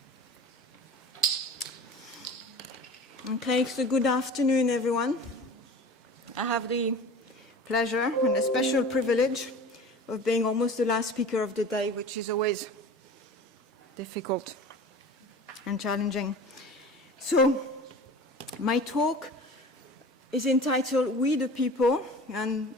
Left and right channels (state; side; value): normal; both; correlation 0.38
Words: Okay, so good afternoon, everyone. I have the pleasure and a special privilege of being almost the last speaker of the day, which is always difficult and challenging. So, my talk is entitled We the People, and